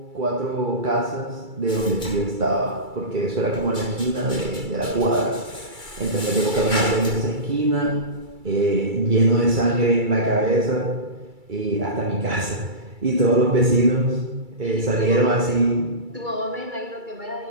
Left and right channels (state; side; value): late; left; 2.3 ms